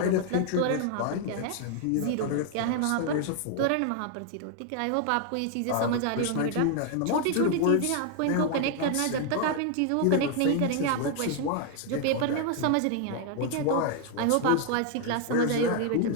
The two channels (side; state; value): both; different; correlation 0.00